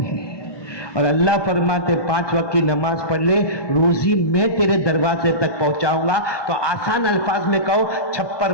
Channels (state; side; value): late; right; 1.2 ms